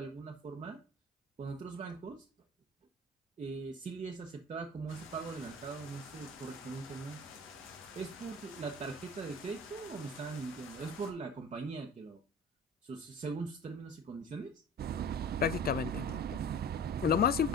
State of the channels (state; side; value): normal; both; correlation 0.39